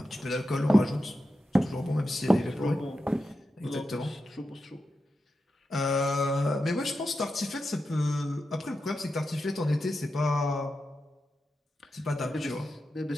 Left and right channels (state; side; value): normal; both; correlation 0.89